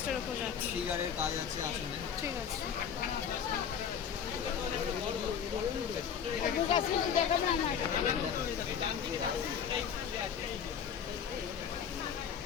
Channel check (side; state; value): right; quieter; 7.8 dB